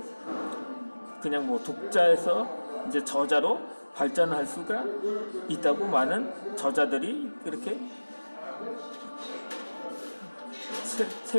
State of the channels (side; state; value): both; inverted; correlation -1.00